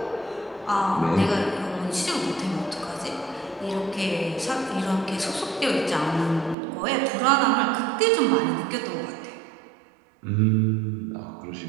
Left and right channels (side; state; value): left; drops out; at 6.6 s